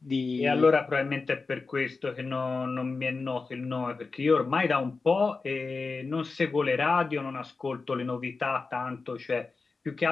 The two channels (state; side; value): quieter; right; 4.2 dB